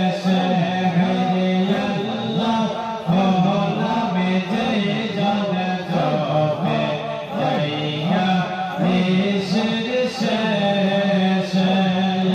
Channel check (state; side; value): identical; both; correlation 1.00